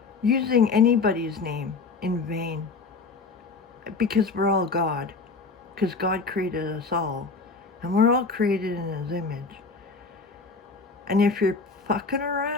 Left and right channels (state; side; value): quieter; right; 4.2 dB